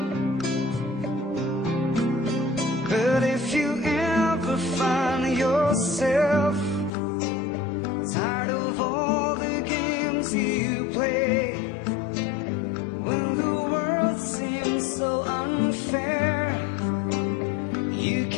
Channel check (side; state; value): right; drops out; at 6.9 s